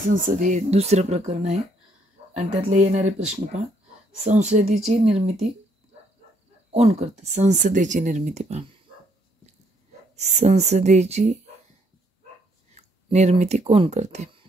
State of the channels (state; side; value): normal; both; correlation 0.70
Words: हे दुसरं प्रकरण आहे आणि त्यातले येणारे प्रश्न पहा. संसदेची निर्मिती कोण करते? संसदेची निर्मिती पहा. संसदेची निर्मिती कोण करते?